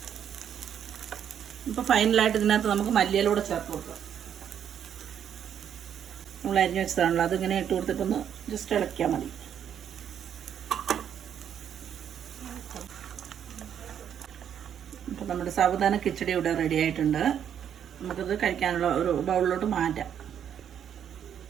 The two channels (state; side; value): quieter; left; 9.0 dB